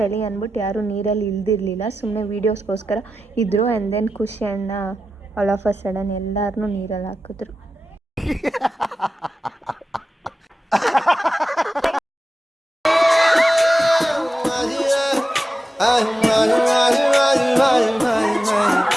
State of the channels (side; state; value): both; normal; correlation 0.92